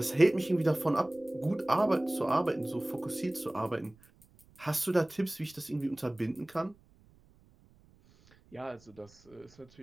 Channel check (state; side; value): noise; right; rumble, 29 dB below the sound